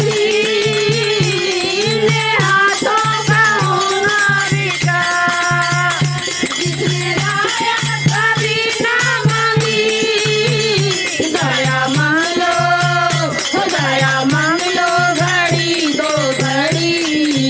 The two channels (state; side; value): identical; both; correlation 1.00